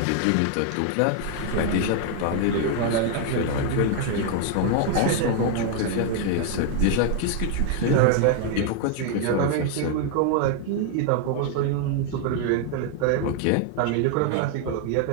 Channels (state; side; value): different; both; correlation 0.00